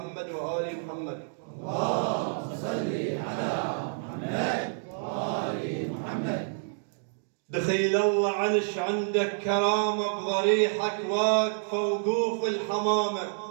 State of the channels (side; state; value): left; silent; digital silence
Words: وال محمد. اللهم صل على محمد وآل محمد. دخيل الله عنش عندك كرامة بضريحك واقفة وقوف الحمامة،